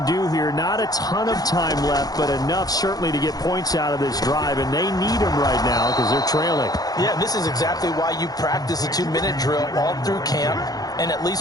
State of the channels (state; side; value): late; right; 0.19 ms